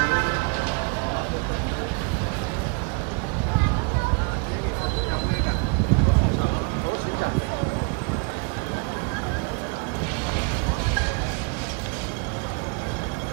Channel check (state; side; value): quieter; left; 33.8 dB